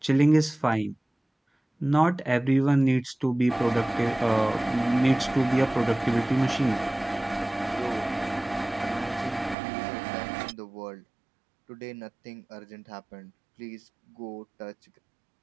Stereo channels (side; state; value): left; drops out; at 9.6 s